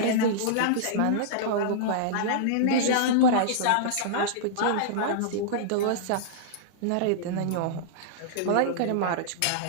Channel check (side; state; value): both; different; correlation -0.02